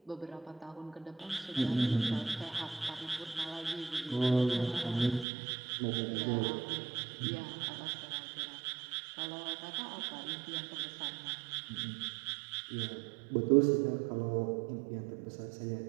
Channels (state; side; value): drops out; left; at 5.2 s